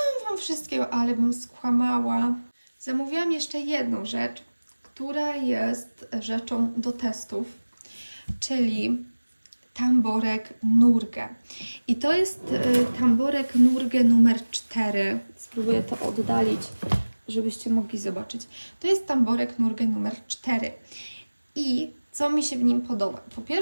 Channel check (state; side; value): inverted; both; correlation -1.00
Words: Wam wszystkiego, ale bym skłamała. Zamówiłam jeszcze jedną rzecz, która jest rzeczą do testów, czyli tamborek Nurge. I to jest tamborek Nurge numer 4. Spróbuję to oddalić, żebyście mogli zobaczyć. To jest tamborek Nurge numer 4. I co mi się w nim podoba? Po